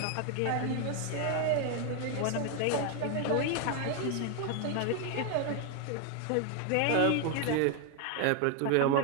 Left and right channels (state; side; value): different; both; correlation 0.01